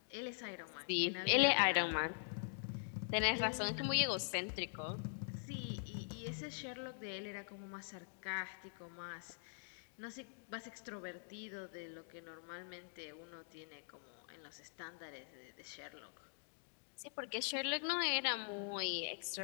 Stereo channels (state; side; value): silent; right; digital silence